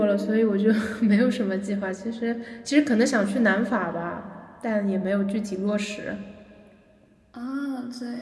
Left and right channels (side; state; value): both; identical; correlation 1.00